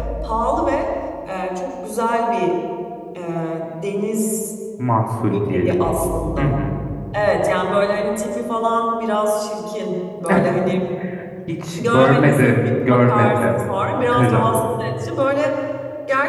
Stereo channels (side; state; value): both; identical; correlation 1.00